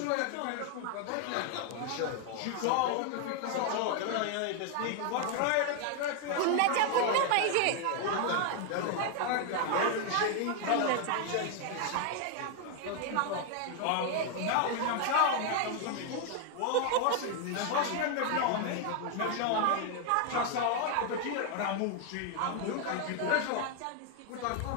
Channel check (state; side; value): different; both; correlation 0.00